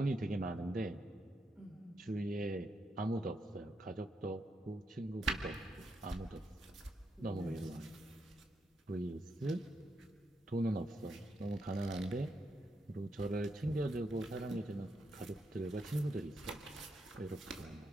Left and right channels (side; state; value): both; normal; correlation 0.81